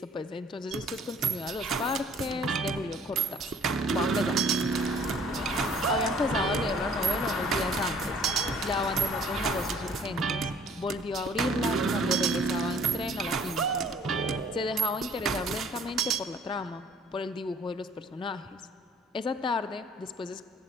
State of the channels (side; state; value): both; normal; correlation 0.55